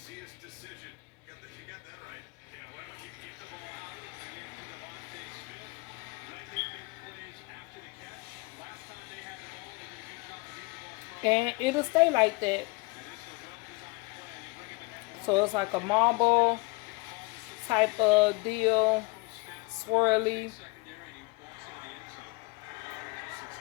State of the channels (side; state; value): right; quieter; 26.9 dB